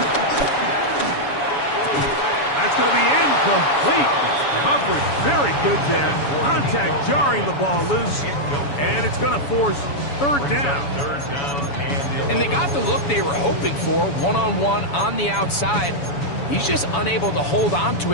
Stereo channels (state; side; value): late; right; 7.1 ms